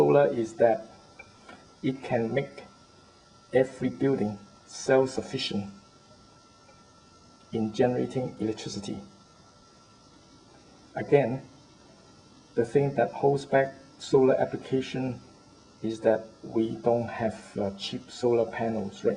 is that it can make every building self-sufficient in generating electricity. Again, the thing that holds back solar application is that we don't have cheap solar panels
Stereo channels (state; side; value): identical; both; correlation 1.00